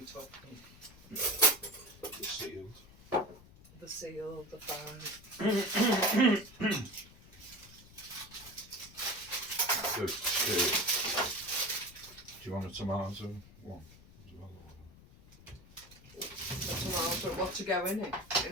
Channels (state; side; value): noise; left; rumble, 22 dB below the sound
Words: took them. The sealed. The sealed, the fine. Good. Do you want a tomato one as well? A tomato, what to go in it?